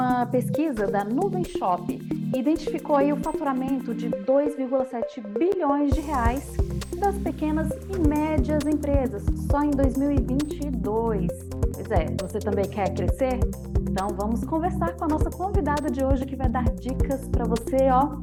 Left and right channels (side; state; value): both; identical; correlation 1.00